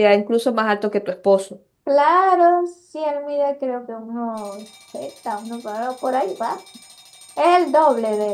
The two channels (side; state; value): both; identical; correlation 1.00